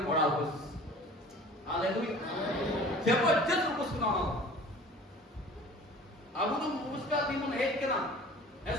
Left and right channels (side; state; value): both; normal; correlation 0.45